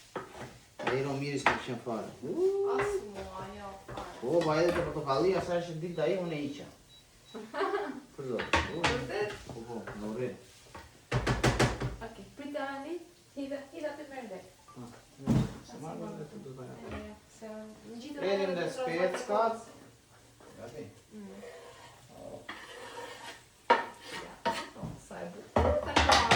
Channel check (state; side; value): identical; both; correlation 1.00